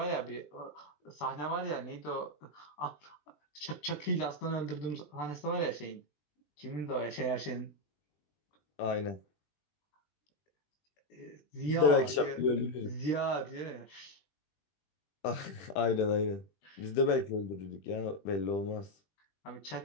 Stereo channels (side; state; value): right; late; 20 ms